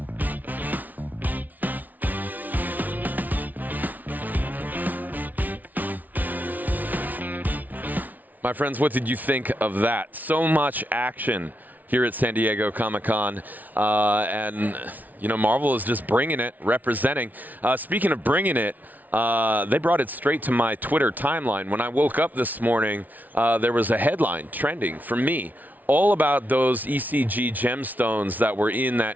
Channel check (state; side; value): late; left; 0.078 ms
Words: My friends, what did you think of that? So much action here at San Diego Comic-Con. And, you know, Marvel is just bringing it, representing. Speaking of bringing it, they brought it straight to my Twitter timeline. When I woke up this morning, there was a headline trending for me all about those ECG gemstones that were in that